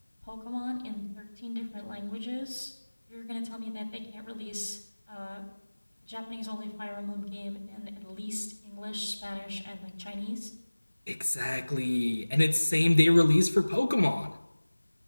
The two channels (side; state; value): both; inverted; correlation -1.00